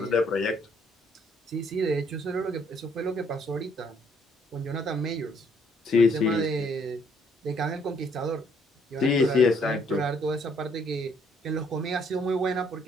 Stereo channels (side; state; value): both; normal; correlation 0.66